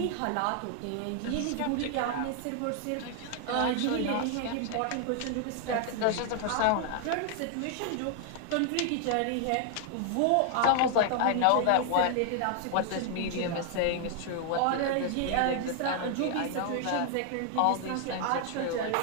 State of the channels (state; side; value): different; both; correlation 0.00